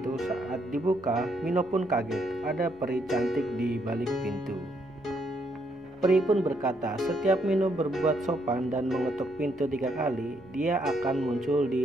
Saat dibuka, Mino pun kaget, ada peri cantik di balik pintu. Peri pun berkata, setiap Mino berbuat sopan dan mengetuk pintu 3 kali, dia akan muncul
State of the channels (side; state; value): both; normal; correlation 0.74